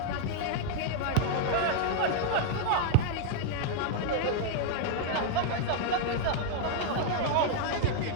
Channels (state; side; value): different; both; correlation 0.00